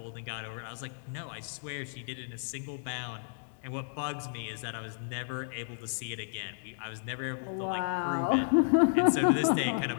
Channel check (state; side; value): silent; right; digital silence